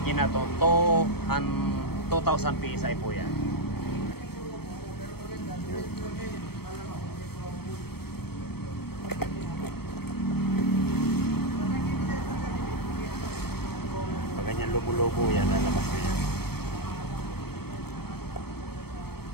na to, 2,000 PSI po yan. Pag ganyan lubo-lubo yan, lalabas na yan.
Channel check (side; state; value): right; late; 0.96 ms